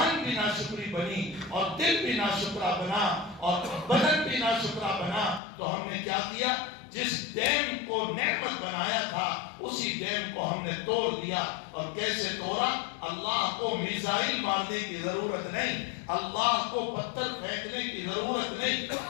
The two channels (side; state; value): right; drops out; at 5.4 s